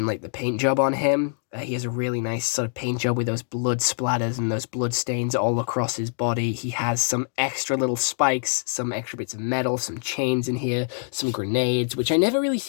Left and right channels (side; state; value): right; silent; digital silence